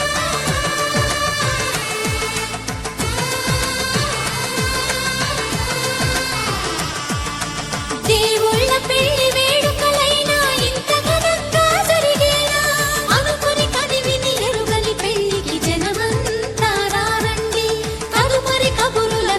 దేవుళ్ళ పెళ్లి వేడుకలైనా ఇంత ఘనంగా జరిగేనా అనుకుని కదివిని ఎరుగని పెళ్లికి జనమంతా రారండి తదుపరి కబురుల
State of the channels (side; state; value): both; identical; correlation 1.00